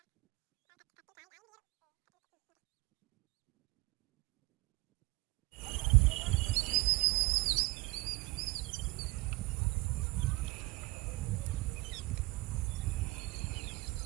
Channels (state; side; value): quieter; left; 23.0 dB